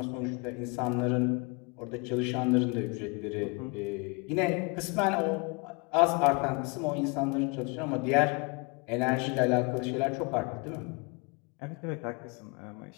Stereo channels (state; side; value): quieter; right; 30.9 dB